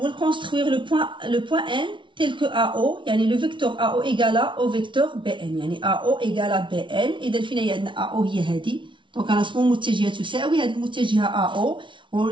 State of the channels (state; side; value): late; left; 0.24 ms